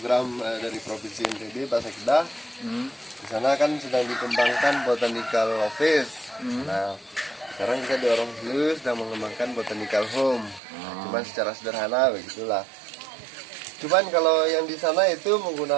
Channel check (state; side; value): drops out; left; at 10.6 s